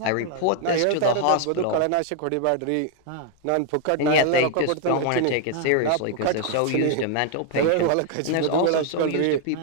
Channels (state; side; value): different; both; correlation 0.00